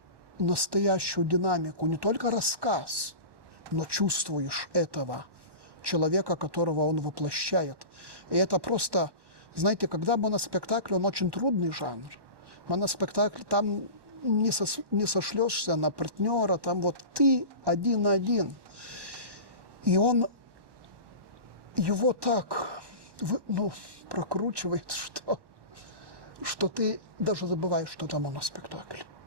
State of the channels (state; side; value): late; left; 1.1 ms